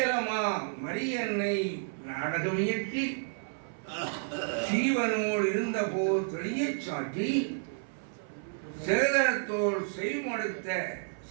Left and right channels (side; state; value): left; silent; 57 dB below the other